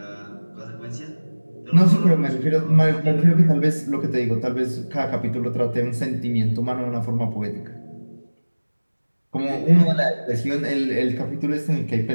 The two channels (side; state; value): both; inverted; correlation -1.00